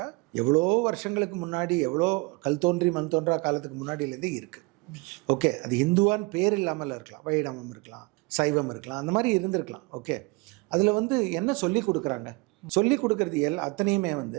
எவ்வளோ வருஷங்களுக்கு முன்னாடி, எவ்வளோ கல் தோன்றி மண் தோன்றா காலத்துக்கு முன்னாடியிலேருந்தே இருக்குது. ஓகே, அது இந்துவான் பேர் இல்லாமல் இருக்கலாம், வைணவம் இருக்கலாம், சைவம் இருக்கலாம், அந்த மாதிரி இருந்திருக்கலாம். ஓகே, அதில் வந்து என்ன சொல்லி கொடுக்குறாங்க? சொல்லி கொடுக்கறது அத்தனையுமே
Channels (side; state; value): left; quieter; 27.2 dB